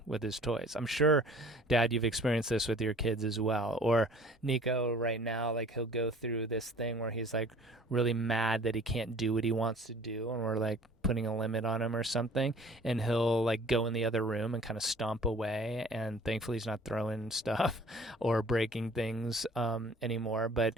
with his toys. I'm sure, Dad, you've experienced this with your kids as well. Or Nico right now, like he'll go through this thing where he's like really mad that he can't do what he wants to do, and we're like putting a limit on him or something, and he'll like go in the other room and kind of stomp away. And thankfully he's not throwing stuff or breaking things anymore, but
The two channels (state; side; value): normal; both; correlation 0.50